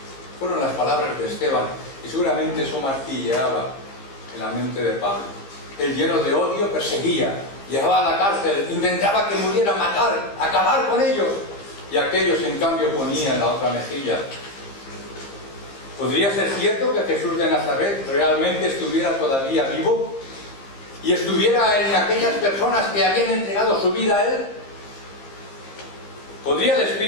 Fueron las palabras de Esteban, y seguramente eso martilleaba en la mente de Pablo. Él, lleno de odio, perseguía, llevaba a la cárcel, intentaba que murieran, matar, acabar con ellos, y aquellos en cambio ponían la otra mejilla. ¿Podría ser cierto que Jesús de Nazaret realmente estuviera todavía vivo y estuviera en aquellas personas que habían entregado su vida a Él? ¿Podría el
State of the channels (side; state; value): right; late; 15 ms